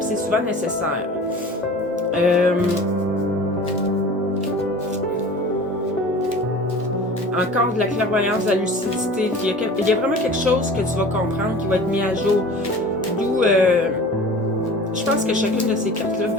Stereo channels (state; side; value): normal; both; correlation 0.40